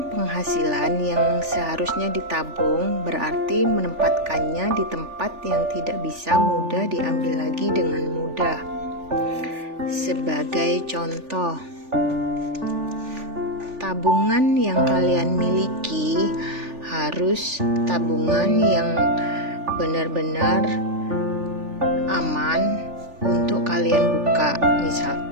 penghasilan yang seharusnya ditabung berarti menempatkannya di tempat yang tidak bisa mudah diambil lagi dengan mudah. Sebagai contoh, tabungan yang kalian miliki harus tabungan yang benar-benar aman untuk kalian buka.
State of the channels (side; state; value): left; late; 3.4 ms